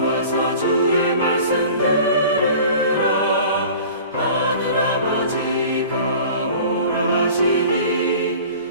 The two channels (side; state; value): both; inverted; correlation -0.43